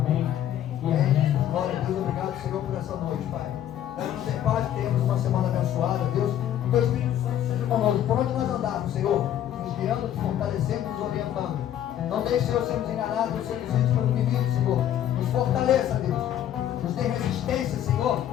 E amém. Glória a Deus, obrigado, Senhor, por essa noite, Pai. Damos em paz, temos uma semana abençoada, Deus. Que o Espírito Santo seja conosco, por onde nós andarmos, Senhor, nos guiando, nos fortalecendo, nos orientando. Não deixe, Senhor, sermos enganados, não sermos vítimas pelo inimigo, Senhor. Nos fortaleça, Deus. Nos dê resistência, Senhor.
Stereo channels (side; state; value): right; quieter; 11.0 dB